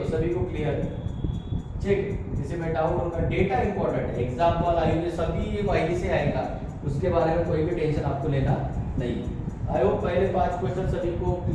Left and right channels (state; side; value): identical; both; correlation 1.00